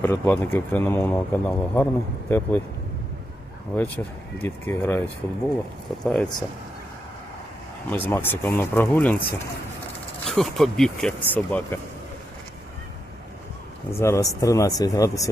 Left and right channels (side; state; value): both; normal; correlation 0.84